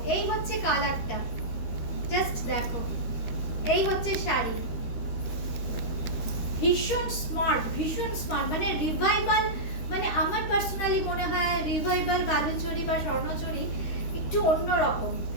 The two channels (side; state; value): right; late; 13 ms